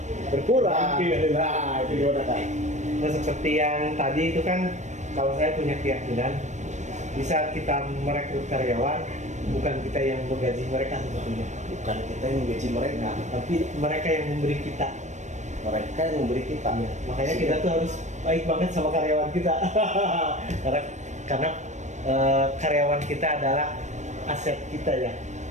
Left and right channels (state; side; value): late; left; 0.34 ms